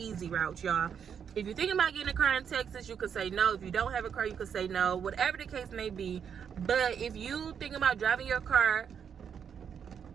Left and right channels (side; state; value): left; quieter; 7.6 dB